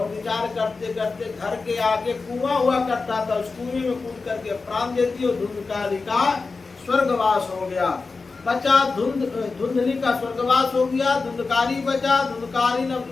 विचार करते करते घर के आगे कुआं हुआ करता था, उस कुएं में कूद करके प्राण देती, और धुंधकारी का स्वर्गवास हो गया। बचा धुंधली का स्वर्गवास हो गया, धुंधकारी बचा। धुंधकारी ने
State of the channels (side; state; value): right; quieter; 4.2 dB